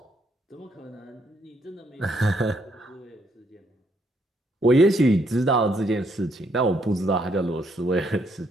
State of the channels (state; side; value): normal; both; correlation 0.72